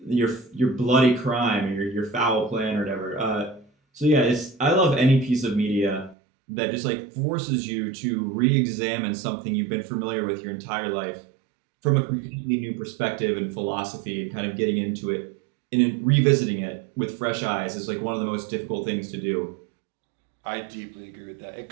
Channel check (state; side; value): drops out; left; at 6.2 s